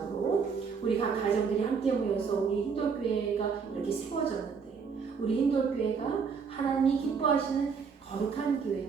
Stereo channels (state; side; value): quieter; left; 5.8 dB